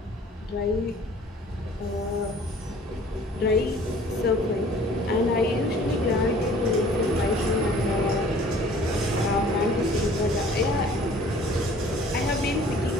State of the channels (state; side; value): normal; both; correlation 0.51